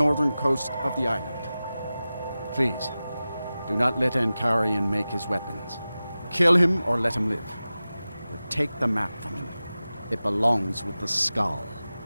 coast of the island. Please, do not let Ankarian make his weapons. Kill him or let him live. But take the map from him. It belongs with the Skull.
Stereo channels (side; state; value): both; inverted; correlation -0.95